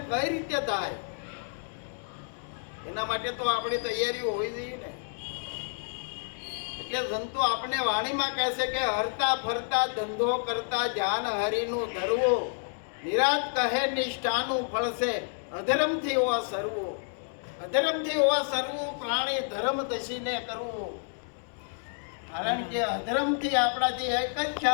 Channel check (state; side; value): silent; right; digital silence